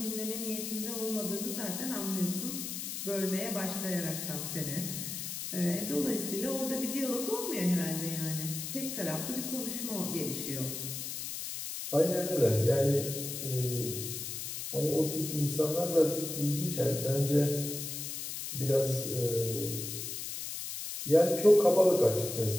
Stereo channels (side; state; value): left; noise; hiss, 6 dB below the sound